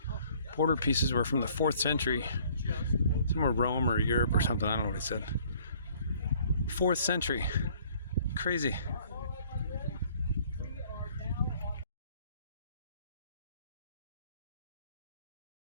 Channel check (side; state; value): both; inverted; correlation -0.58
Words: border pieces were from the 4th century. Somewhere Rome or Europe or something, I don't know what he said. 4th century. Crazy.